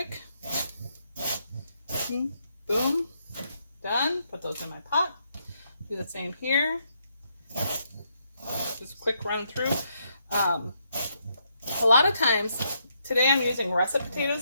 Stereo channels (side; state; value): both; inverted; correlation -0.77